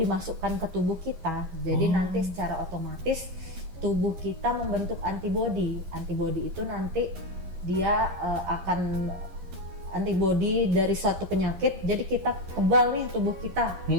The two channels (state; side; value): late; left; 11 ms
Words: ke tubuh kita. Jadi nanti secara otomatis tubuh kita membentuk antibodi. Antibodi itu nanti dia akan antibodi dari suatu penyakit. Jadi kita kebal nih tubuh kita.